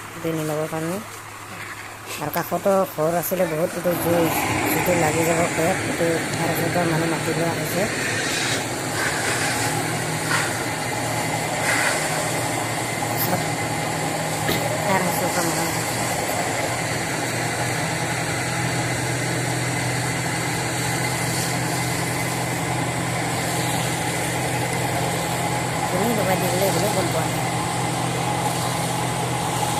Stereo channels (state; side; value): identical; both; correlation 1.00